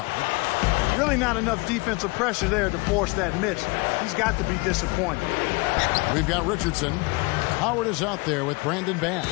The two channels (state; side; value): quieter; right; 27.2 dB